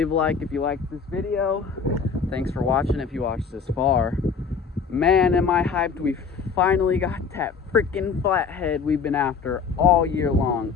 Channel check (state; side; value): quieter; right; 5.7 dB